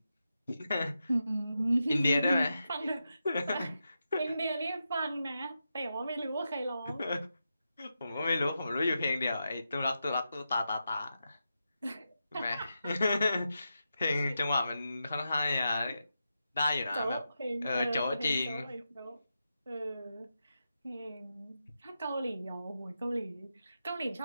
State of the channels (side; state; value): both; inverted; correlation -0.88